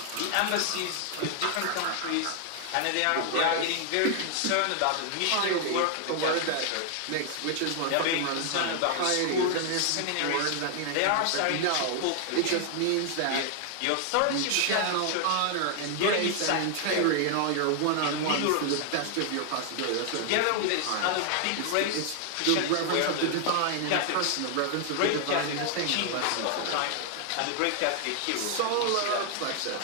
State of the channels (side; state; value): both; different; correlation 0.00